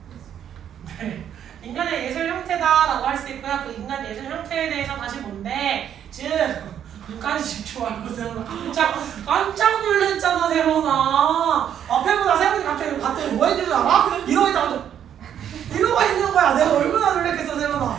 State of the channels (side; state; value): left; quieter; 9.5 dB